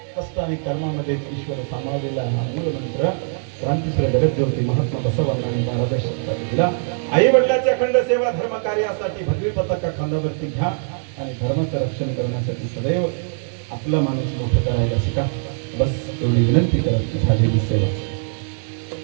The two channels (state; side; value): silent; left; digital silence